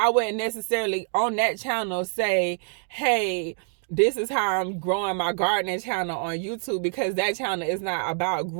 wouldn't necessarily on that channel say, hey, this is how I'm growing my gardening channel on YouTube, because that channel is not about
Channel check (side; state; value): left; silent; digital silence